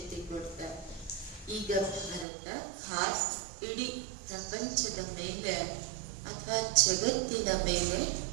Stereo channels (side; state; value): left; drops out; at 2.2 s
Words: ಕೊಡ್ತಾರೆ. ಈಗ ಭಾರತ ಖಾಸ್ ಇಡೀ ಪ್ರಪಂಚದ ಮೇಲೆ ಅಥವಾ ಜಗತ್ತಿನ ಮೇಲೆ